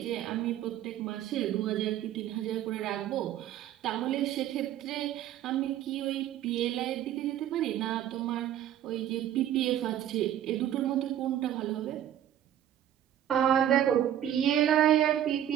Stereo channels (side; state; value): left; quieter; 11.2 dB